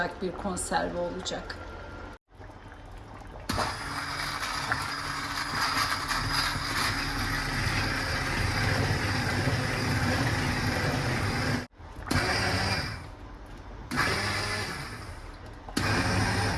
bir konserve olacak.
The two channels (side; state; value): both; identical; correlation 1.00